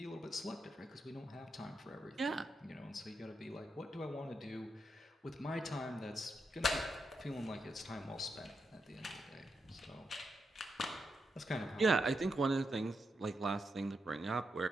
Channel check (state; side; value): normal; both; correlation 0.85